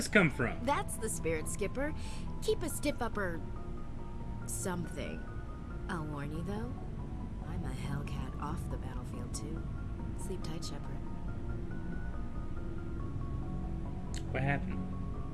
come from? That's the spirit, Skipper. Keep a stiff upper... something. I'll warn you, though. I'm a Hellcat off the battlefield, too. Sleep tight, Shepard. What happened?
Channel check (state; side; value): identical; both; correlation 1.00